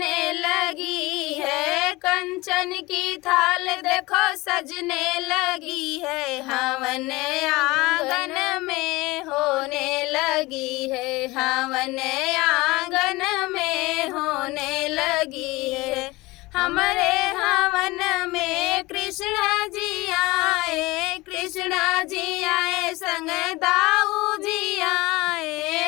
लगी है, कंचन की थाल देखो सजने लगी है, हवन आंगन में होने लगी है, हवन आंगन में होने लगी है। हमारे हवन में कृष्ण जी आए, कृष्ण जी आए संग दाऊ जी आए।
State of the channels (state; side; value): quieter; right; 21.5 dB